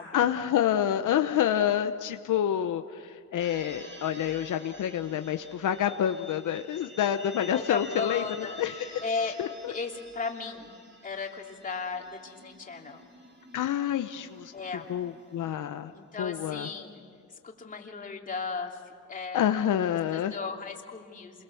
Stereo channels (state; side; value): quieter; right; 8.8 dB